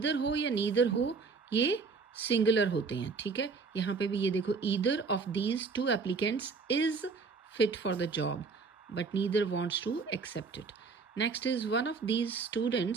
हो या नीदर हो ये सिंगुलर होते हैं, ठीक है। यहाँ पे भी ये देखो, either of these two applicants is fit for the job but neither wants to accept it. Next is one of these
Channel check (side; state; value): left; quieter; 4.7 dB